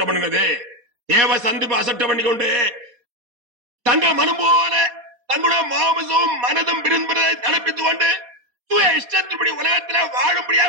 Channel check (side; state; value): left; late; 4.2 ms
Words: பண்ணினது. தேவ சந்திப்பு அசட்டை பண்ணி கொண்டு தங்கள் மனம் போல தங்களுடைய மாமிசமும் மனதும் விரும்புவதை நடப்பித்துக் கொண்டு சுய இஷ்டத்தின்படி உலகத்தில்